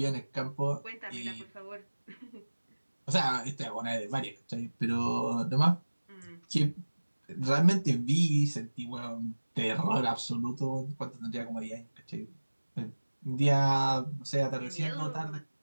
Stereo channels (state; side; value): inverted; both; correlation -1.00